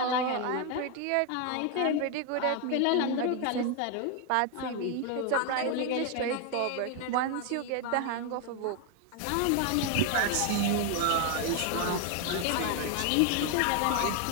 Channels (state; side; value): different; both; correlation 0.01